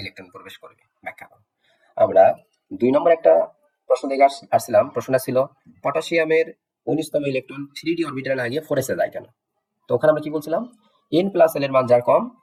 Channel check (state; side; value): identical; both; correlation 1.00